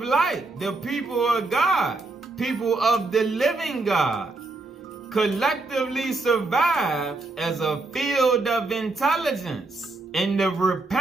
light, the people of God, people of the living God, collectively survive as a field of intelligence in the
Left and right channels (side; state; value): left; quieter; 3.3 dB